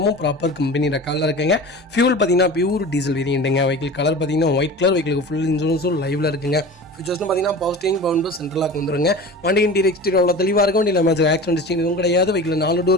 ப்ராப்பர் கம்பெனி ரெக்கார்டில் இருக்குங்க. ஃபியூல் பார்த்தீங்கன்னா பியூர் டீசல் வேரியண்ட்டுங்க. வெஹிக்கிள் கலர் பார்த்தீங்கன்னா ஒயிட் கலர். வெஹிக்கிளுக்கு ஃபுல் இன்சூரன்ஸும் லைவில் இருக்குங்க. ஃபியூச்சர்ஸ்னு பார்த்தீங்கன்னா பவர் ஸ்டீரிங், பவர் விண்டோ, சென்ட்ரலாக வந்துருங்க. வண்டி இன்டீரியர் எக்ஸ்டீரியர் அவ்வளோ தெளிவாக இருக்கும். வண்டியில் மேட்ச் ஆக்சிடென்ட் ஹிஸ்டரி எதுவும் கிடையாது. வெஹிக்கில் 4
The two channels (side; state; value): both; normal; correlation 0.35